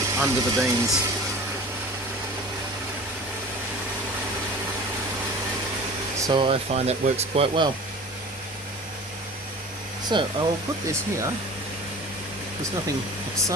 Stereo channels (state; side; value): normal; both; correlation 0.40